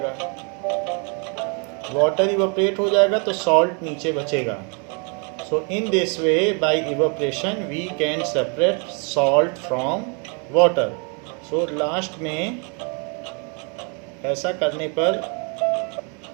वाटर इवेपोरेट हो जाएगा तो सॉल्ट नीचे बचेगा. So in this way by evaporation we can separate salt from water. So last में ऐसा करने पर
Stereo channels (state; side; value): quieter; left; 36.7 dB